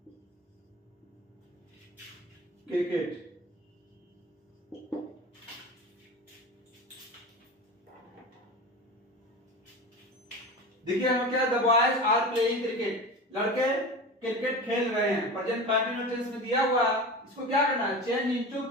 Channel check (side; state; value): both; normal; correlation 0.30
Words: cricket. देखिए हम क्या, the boys are playing cricket, लड़के क्रिकेट खेल रहे हैं। प्रेजेंट कंटिन्यूअस टेंस में दिया हुआ, इसको क्या करना है, चेंज इनटू